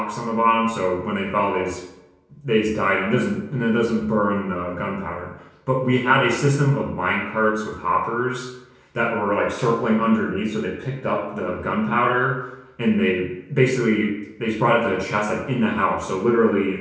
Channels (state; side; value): identical; both; correlation 1.00